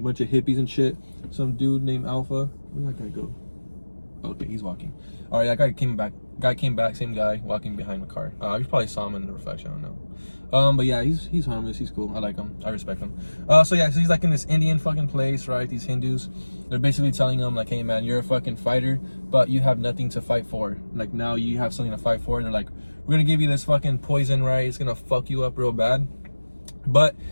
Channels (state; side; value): inverted; both; correlation -1.00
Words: bunch of hippies and shit. Some dude named Alpha. Where'd that guy go? Okay, he's walking. All right, that guy came back. Same guy walking behind the car. You probably saw him in the reflection. I don't know. But yeah, he's harmless. He's cool. I like him. I respect him. So yeah, so he's like in this Indian fucking place, right? These Hindus, they're basically telling him like, "Hey man, you're a fucking fighter, but you have nothing to fight for. Like now you have something to fight for." And they're like, "We're gonna give you this fucking poison, right? It's gonna fuck you up real bad." But